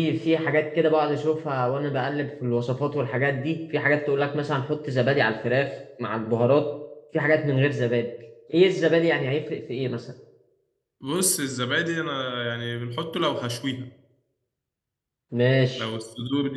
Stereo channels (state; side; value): identical; both; correlation 1.00